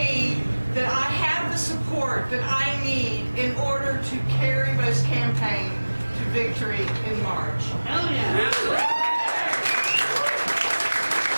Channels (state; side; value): inverted; both; correlation -1.00